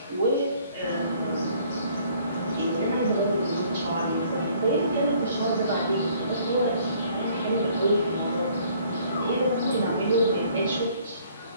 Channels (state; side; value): inverted; both; correlation -0.60